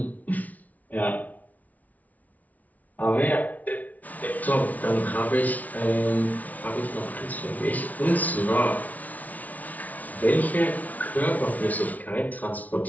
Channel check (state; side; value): late; right; 0.073 ms